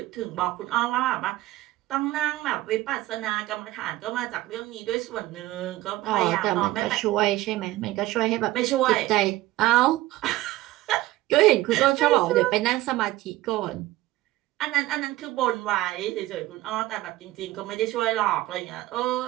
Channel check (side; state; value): left; quieter; 17.2 dB